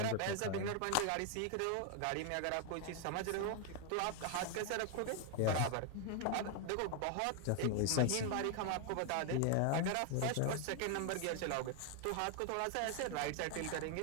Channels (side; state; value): both; different; correlation 0.00